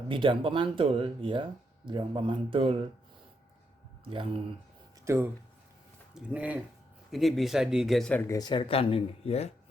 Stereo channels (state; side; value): normal; both; correlation 0.79